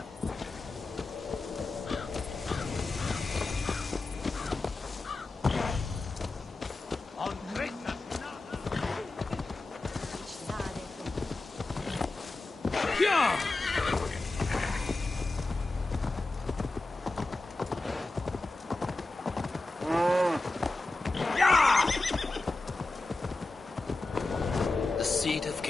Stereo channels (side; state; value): right; quieter; 3.1 dB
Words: The seat of